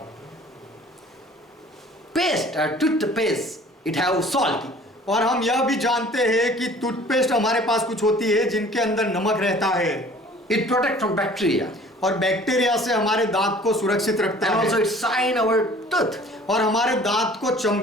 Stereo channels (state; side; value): normal; both; correlation 0.50